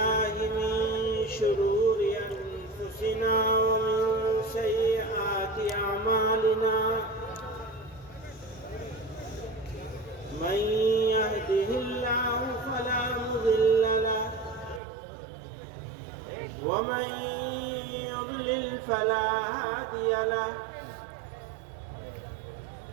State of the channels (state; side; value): drops out; left; at 14.8 s